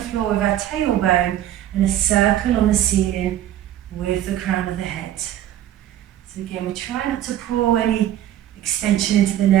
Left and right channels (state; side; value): quieter; left; 12.0 dB